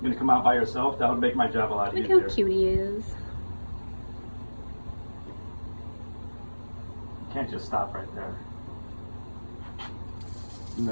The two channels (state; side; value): inverted; both; correlation -1.00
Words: gonna come out by yourself? That would make my job a lot Look easier. how cute he is. You can't just stop right there.